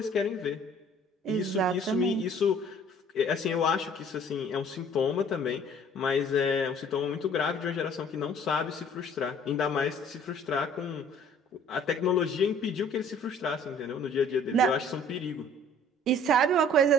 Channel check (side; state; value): both; normal; correlation 0.53